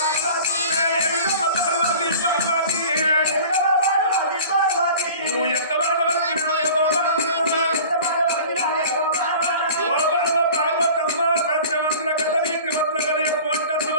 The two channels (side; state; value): both; inverted; correlation -0.42